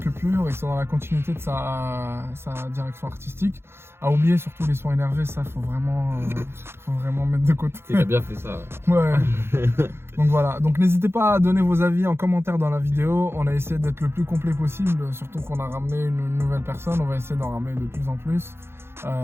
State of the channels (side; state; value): left; late; 0.12 ms